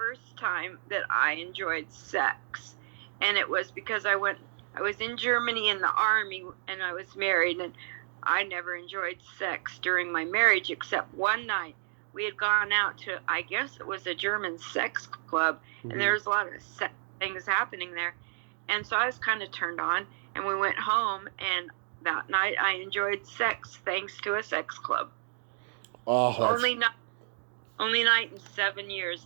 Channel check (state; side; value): silent; left; digital silence